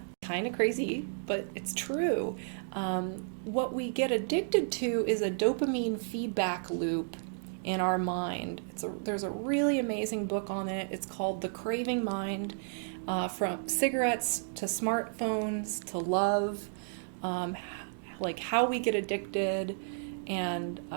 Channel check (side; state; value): left; silent; digital silence